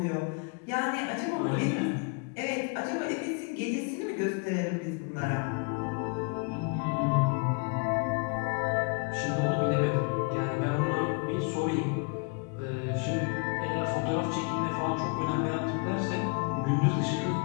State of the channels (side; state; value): right; quieter; 33.7 dB